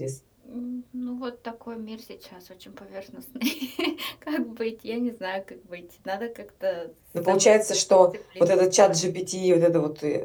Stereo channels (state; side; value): identical; both; correlation 1.00